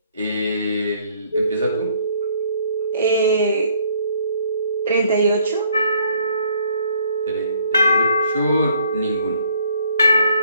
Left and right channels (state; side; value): inverted; both; correlation -0.64